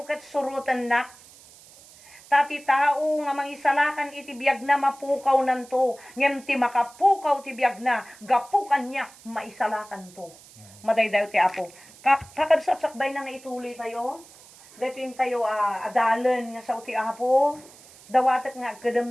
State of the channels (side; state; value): right; noise; hiss, 22 dB below the sound